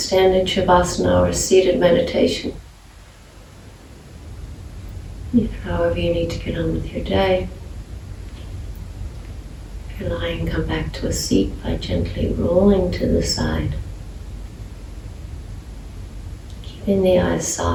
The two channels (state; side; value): identical; both; correlation 1.00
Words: Shavasana or a seated meditation. If, however, you need to get on with your day, if you're lying, come back to a seat by gently rolling to the side. Keeping the eyes